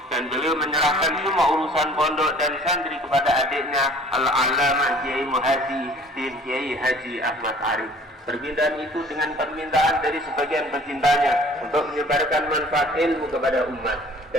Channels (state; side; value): normal; both; correlation 0.51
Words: dan beliau menyerahkan semua urusan pondok dan santri kepada adiknya Al-Alamah Kiai Muhyiddin Kiai Haji Ahmad Arif. Permintaan itu dengan permintaan dari sebagian pecintanya untuk menyebarkan manfaat ilmu kepada umat,